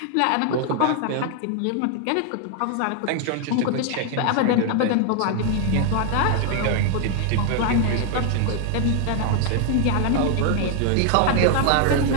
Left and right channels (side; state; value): both; different; correlation 0.00